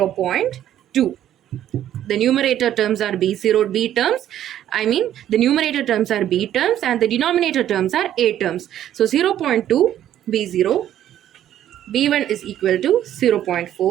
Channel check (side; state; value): left; quieter; 11.5 dB